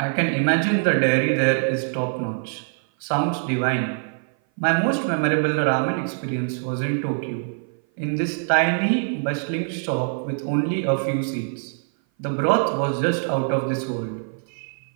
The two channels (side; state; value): left; silent; 57 dB below the other